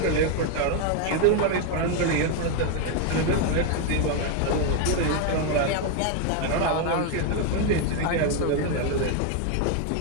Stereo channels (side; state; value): both; different; correlation 0.01